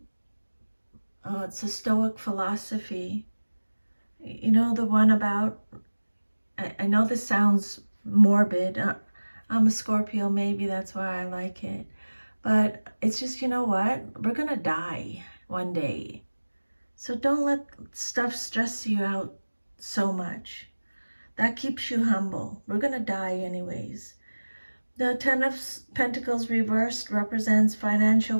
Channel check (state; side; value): inverted; both; correlation -1.00